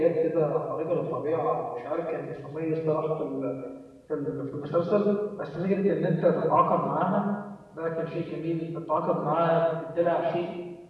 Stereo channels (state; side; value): identical; both; correlation 1.00